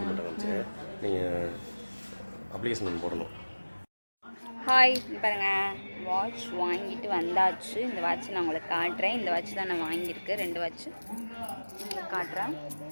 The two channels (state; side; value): inverted; both; correlation -1.00